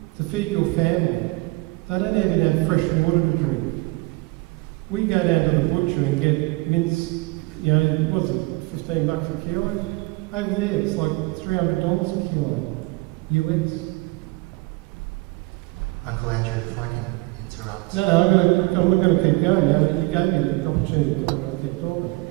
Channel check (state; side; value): quieter; left; 24.4 dB